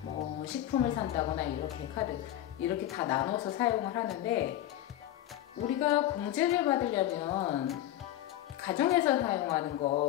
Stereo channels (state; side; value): quieter; right; 13.2 dB